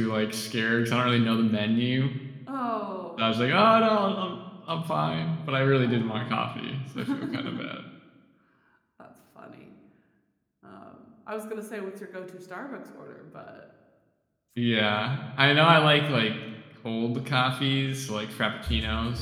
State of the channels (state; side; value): identical; both; correlation 1.00